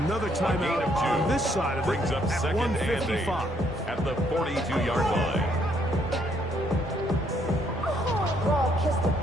Another timeout on this side of it brings up at second 1:55. At the 42-yard line.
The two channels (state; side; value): normal; both; correlation 0.69